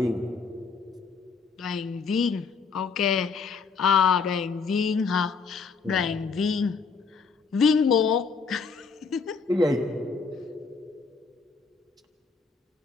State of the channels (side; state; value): right; quieter; 5.1 dB